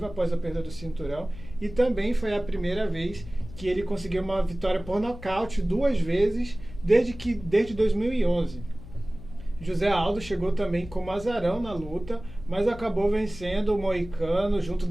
após a perda do cinturão e também foi a primeira vez que ele conseguiu uma vitória por nocaute duas vezes desde 2011. José Aldo chegou também como azarão na luta, mas acabou vencendo o Moicano junto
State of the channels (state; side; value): noise; left; hum, 15 dB below the sound